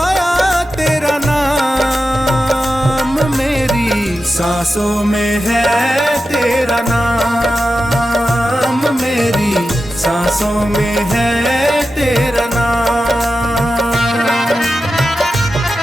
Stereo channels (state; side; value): normal; both; correlation 0.91